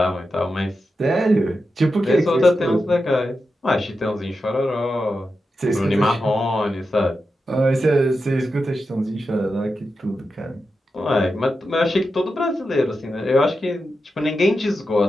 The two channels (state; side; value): normal; both; correlation 0.89